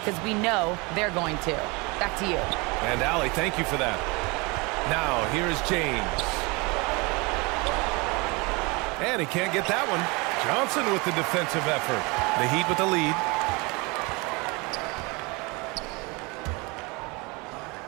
we know they're going to." Back to you. And Allie, thank you for that. Now, here is James. And he can't get that one. Johnson with the defensive effort. The Heat with the lead.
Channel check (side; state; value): left; quieter; 27.2 dB